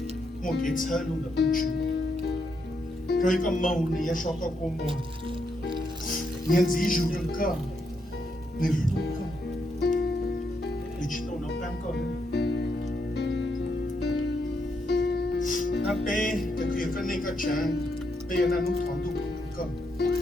Mokits Halu the Uchu, Koika Moni, Yashaka Komo, Yanzi Juka, Niluka. digital nó đang có nó bé cái kia cái này cái chán bé nó thằng tụ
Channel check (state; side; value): normal; both; correlation 0.79